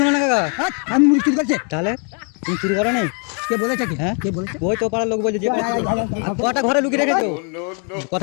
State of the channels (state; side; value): quieter; right; 38.5 dB